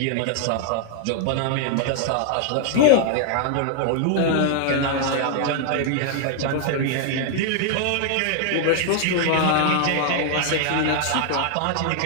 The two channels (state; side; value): different; both; correlation 0.00